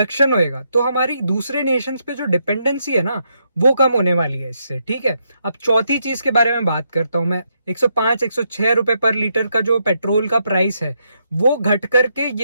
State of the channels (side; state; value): both; inverted; correlation -0.79